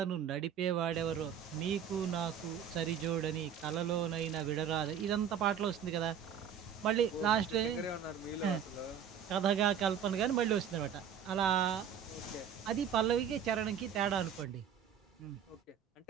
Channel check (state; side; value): quieter; left; 8.2 dB